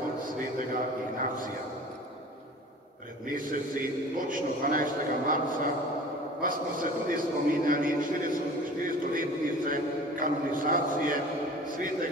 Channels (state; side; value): normal; both; correlation 0.42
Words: svetega Ignacija. Pred meseci, točno 12. marca, pa smo se tudi spominjali 400-letnice kanonizacije